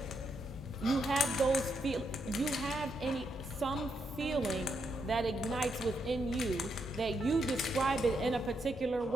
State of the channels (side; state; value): both; normal; correlation 0.80